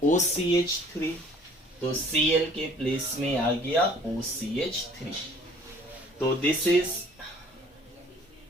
OCH3, तो Cl के प्लेस में आ गया OCH3। तो दिस इज,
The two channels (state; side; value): normal; both; correlation 0.54